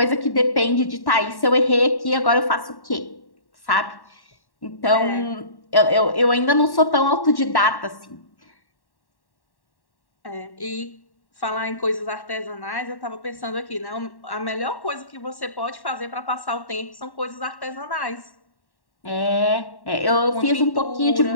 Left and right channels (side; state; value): right; late; 1.1 ms